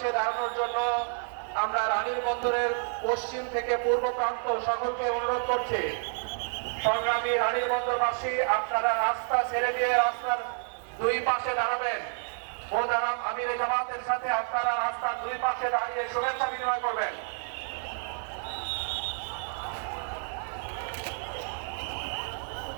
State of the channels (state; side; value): silent; left; 58 dB below the other